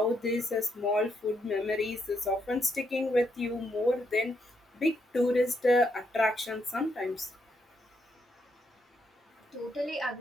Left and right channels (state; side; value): normal; both; correlation 0.78